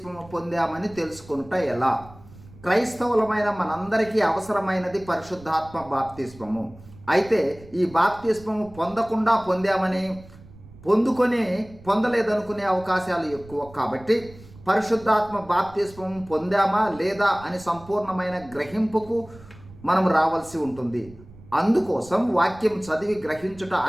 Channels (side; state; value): right; noise; rumble, 21 dB below the sound